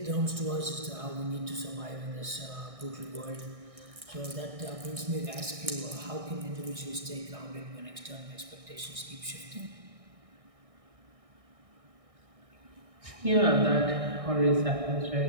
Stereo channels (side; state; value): left; late; 1.6 ms